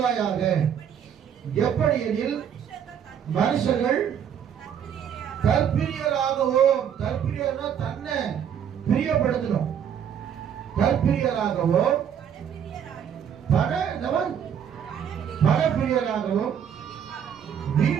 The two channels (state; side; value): quieter; left; 8.5 dB